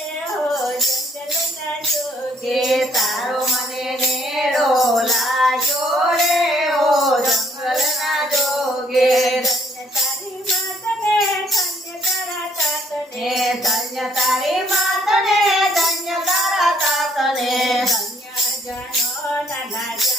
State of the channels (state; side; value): normal; both; correlation 0.65